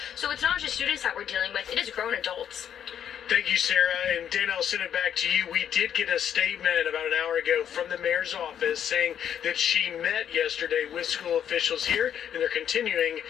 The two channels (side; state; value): right; quieter; 9.2 dB